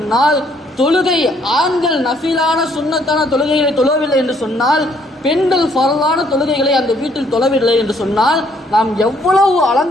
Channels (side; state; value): both; normal; correlation 0.67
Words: தொழுகை ஆண்கள் நஃபிலான சுன்னத்தான தொழுகைகளை தொழவில்லை என்று சொன்னால், பெண்கள் ஃபரலான தொழுகைகளை அந்த வீட்டில் தொழவில்லை என்று சொன்னால், நாம் எவ்வளவு